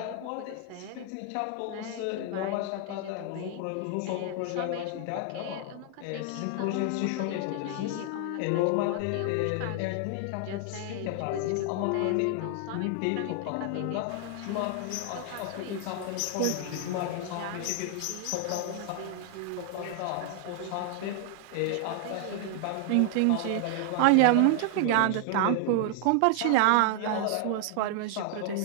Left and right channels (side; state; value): both; different; correlation 0.00